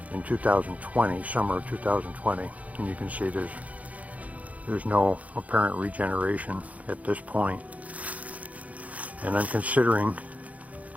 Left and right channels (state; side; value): late; left; 0.070 ms